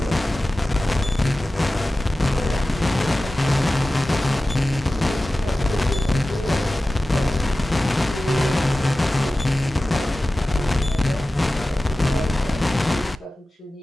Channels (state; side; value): normal; both; correlation 0.96